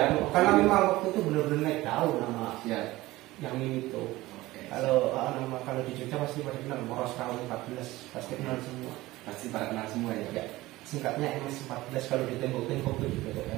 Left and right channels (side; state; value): left; quieter; 18.4 dB